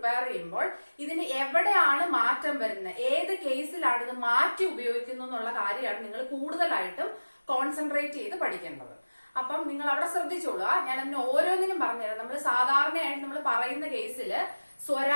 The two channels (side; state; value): both; inverted; correlation -1.00